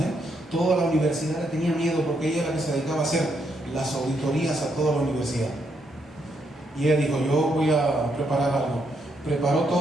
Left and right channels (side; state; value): both; normal; correlation 0.77